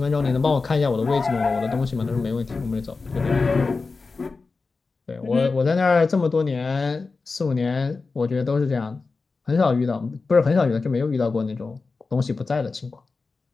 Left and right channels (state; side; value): quieter; right; 4.1 dB